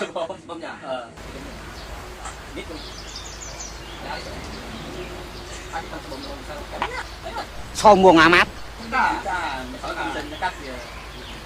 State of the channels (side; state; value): both; identical; correlation 1.00